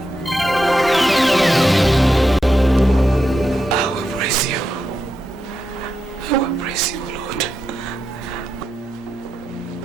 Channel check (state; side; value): normal; both; correlation 0.86